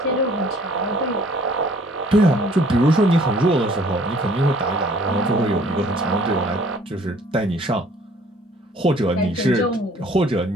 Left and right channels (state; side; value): normal; both; correlation 0.56